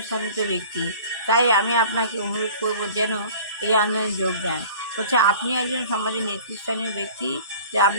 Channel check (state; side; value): inverted; both; correlation -0.45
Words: ব্যক্তি, তাই আমি আপনাকে অনুরোধ করব যেন এই আন্দোলনে যোগ দেন। হচ্ছে আপনি একজন সমাজের নেতৃস্থানীয় ব্যক্তি, যে